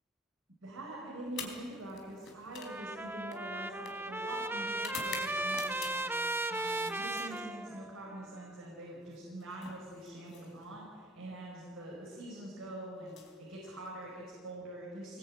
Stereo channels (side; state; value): both; normal; correlation 0.51